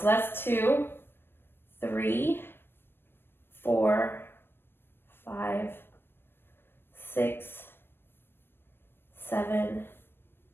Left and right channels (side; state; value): right; late; 0.10 ms